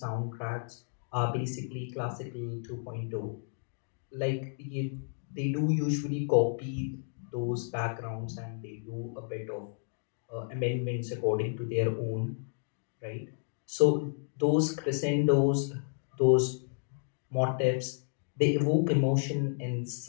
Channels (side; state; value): right; silent; digital silence